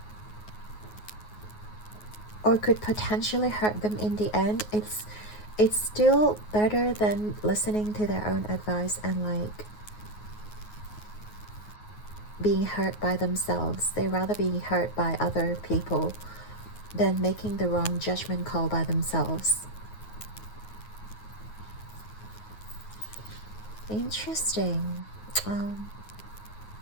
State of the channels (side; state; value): right; late; 9.4 ms